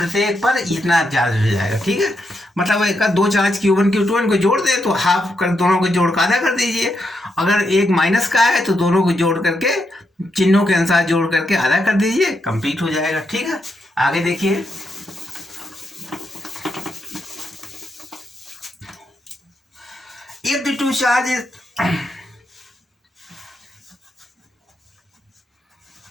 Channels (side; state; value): both; normal; correlation 0.82